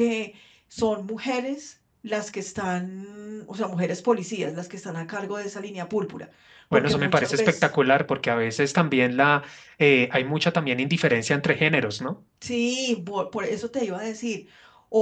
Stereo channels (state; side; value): identical; both; correlation 1.00